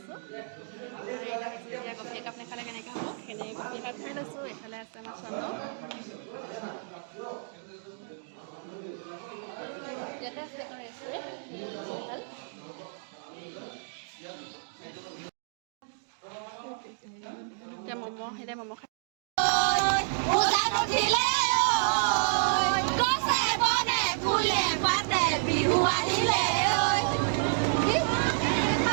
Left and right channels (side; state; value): left; silent; digital silence